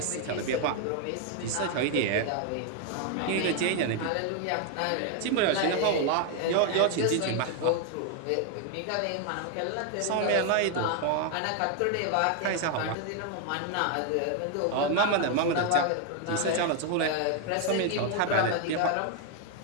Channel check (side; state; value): both; different; correlation 0.01